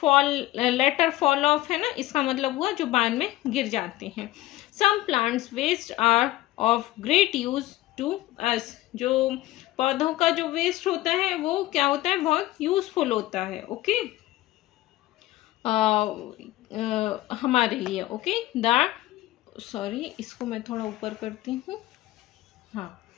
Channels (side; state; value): right; quieter; 16.7 dB